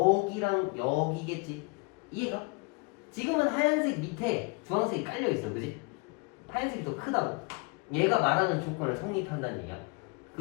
여기겠지? 이해가? 지금은 하얀색 밑에 주황색이 깔려있어, 그지? 하얀색이 더 크다고. 얘가 말하는 조건을 성립한다는 얘기야.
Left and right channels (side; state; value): right; quieter; 28.8 dB